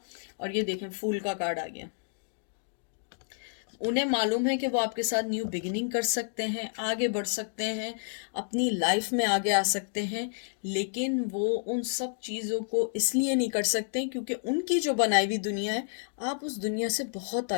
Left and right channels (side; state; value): right; silent; digital silence